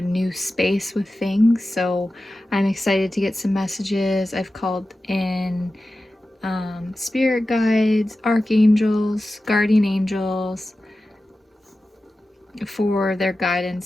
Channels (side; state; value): both; normal; correlation 0.94